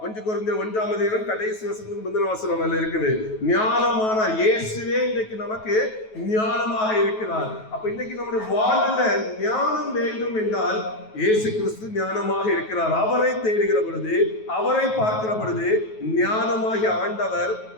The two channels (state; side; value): late; right; 9.3 ms